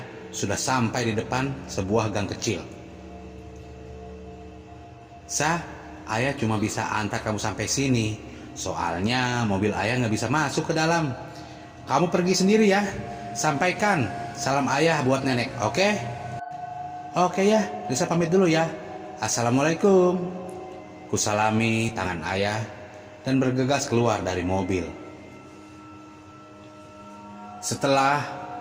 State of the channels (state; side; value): identical; both; correlation 1.00